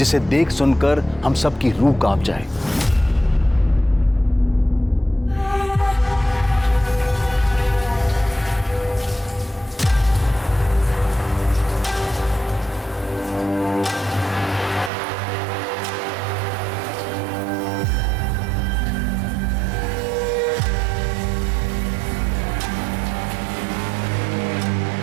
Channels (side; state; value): left; drops out; at 14.9 s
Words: देख सुनकर हम सबकी रूह कांप जाए।